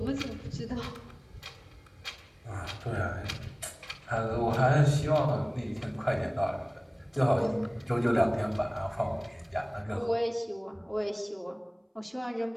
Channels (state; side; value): identical; both; correlation 1.00